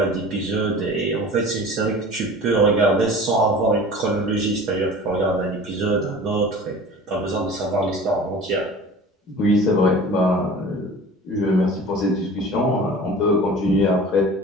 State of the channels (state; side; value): normal; both; correlation 0.40